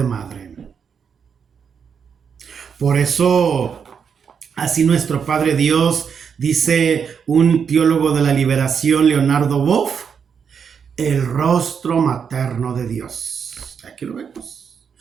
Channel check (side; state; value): left; quieter; 6.8 dB